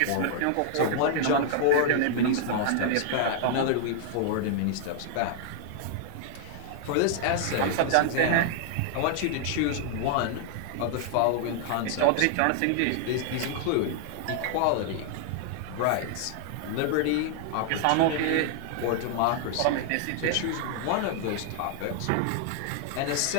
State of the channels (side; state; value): both; different; correlation -0.01